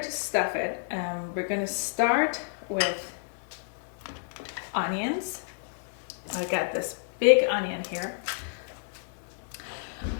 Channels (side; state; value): right; silent; 58 dB below the other